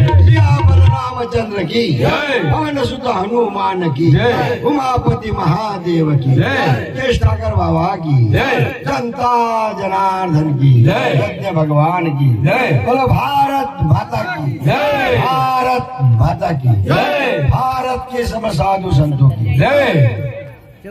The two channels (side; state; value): both; identical; correlation 1.00